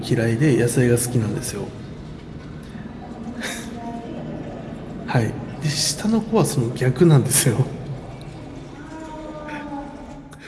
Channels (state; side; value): identical; both; correlation 1.00